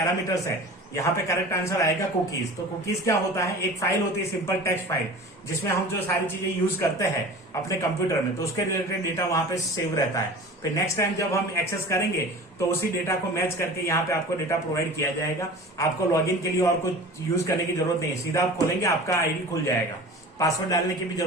है, यहाँ पे करेक्ट आंसर आएगा कुकीज। तो कुकीज क्या होता है, एक फाइल होती है सिंपल टेक्स्ट फाइल, जिसमें हम जो सारी चीजें यूज करते हैं अपने कंप्यूटर में, तो उसके रिलेटेड डेटा वहां पे सेव रहता है। फिर नेक्स्ट टाइम जब हम एक्सेस करेंगे तो उसी डेटा को मैच करके यहाँ पे आपको डेटा प्रोवाइड किया जाएगा। आपको लॉगिन के लिए और कुछ यूज करने की जरूरत नहीं है, सीधा आप खोलेंगे आपका आईडी खुल जाएगा, पासवर्ड डालने की भी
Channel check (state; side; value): normal; both; correlation 0.38